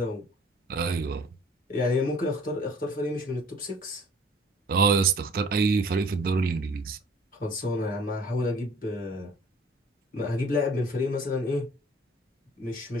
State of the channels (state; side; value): normal; both; correlation 0.51